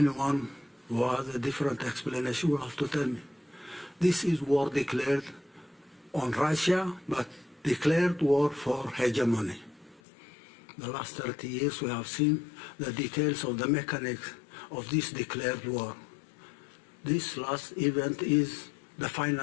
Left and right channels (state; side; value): drops out; right; at 10.0 s